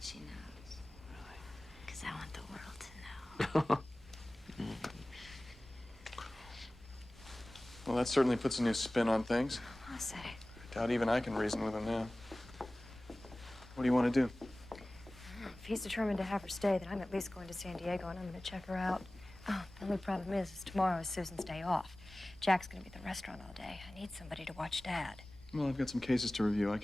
she knows. Really? Because I want the world to know. Well, that certainly puts a new spin on things. I'll say. I doubt even I can reason with him now. What do you want to do? If he's determined to have her stay, then I'm at least going to San Diego and I'm going to check her out. Oh, the only problem is tomorrow is Susan's day off. Jack's going to be at the restaurant all day. I need somebody to watch Dad. Well, I've got some cases to review. I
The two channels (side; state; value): both; normal; correlation 0.98